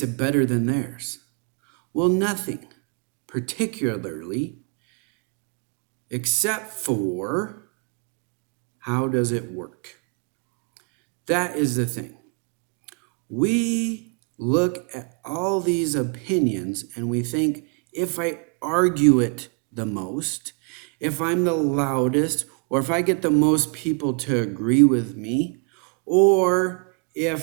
better than theirs? Well, nothing, particularly, except for how does it work? That is the thing. We look at all these opinions and we think, if I argue it the most, if I'm the loudest, or if I get the most people to agree with me, or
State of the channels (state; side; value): quieter; left; 39.2 dB